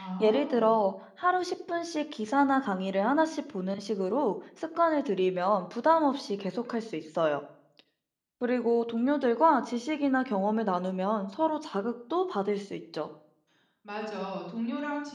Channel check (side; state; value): both; identical; correlation 1.00